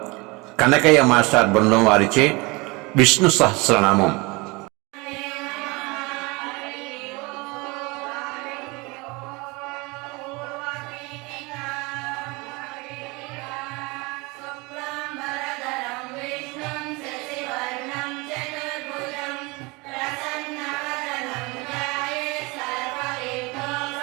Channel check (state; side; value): quieter; left; 25.7 dB